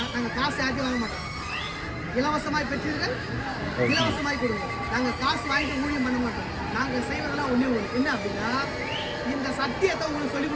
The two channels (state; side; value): identical; both; correlation 1.00